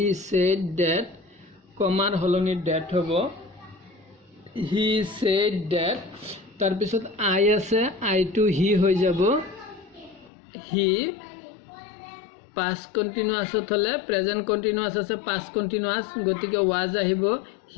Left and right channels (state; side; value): drops out; right; at 10.3 s